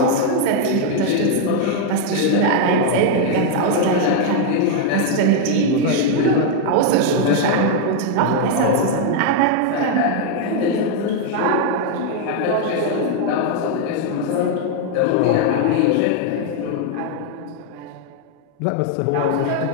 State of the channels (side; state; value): both; different; correlation 0.00